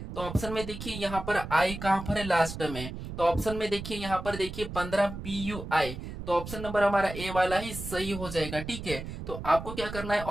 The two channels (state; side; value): noise; right; rumble, 9 dB below the sound